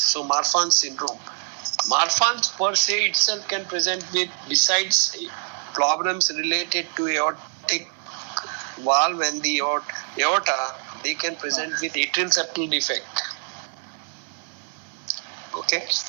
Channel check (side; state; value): left; silent; 59 dB below the other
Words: Marfan's syndrome. Marfan's per se itself can present with, besides problems related to aortic valve and the aorta, they can present with atrial septal defect. Okay.